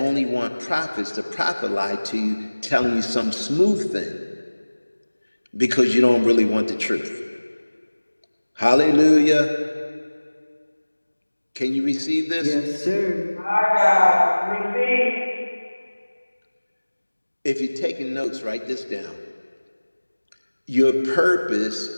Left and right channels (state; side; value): inverted; both; correlation -1.00